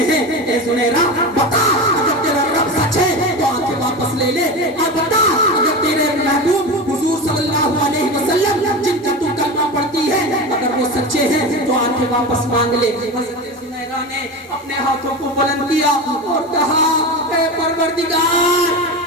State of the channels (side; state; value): both; normal; correlation 0.24